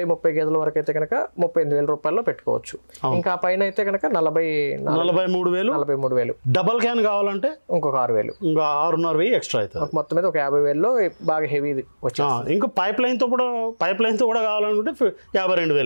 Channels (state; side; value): inverted; both; correlation -1.00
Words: గేదెల వరకు అయితే కనుక 38,000 రూపాయల్లో పెట్టుకోవచ్చు. ఇంకా పైన అయితే కనుక 43,000. డబల్ క్యాన్ కావాలంటే ఇంకొక 6,000, ఇంకా 6,500 ఎక్స్ట్రా అవుతుంది. మొత్తం మీద ఒక 50,000లో బాగా హెవీది వచ్చి. ఇంకా పైప్ లైన్ తో కూడా కావాలనుకుంటే